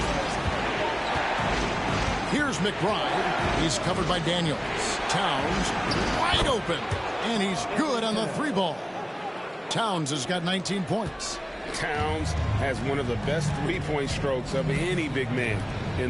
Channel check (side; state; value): both; identical; correlation 1.00